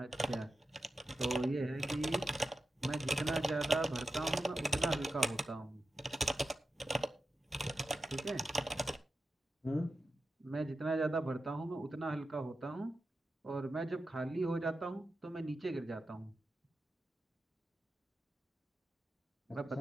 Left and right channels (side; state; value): both; normal; correlation 0.91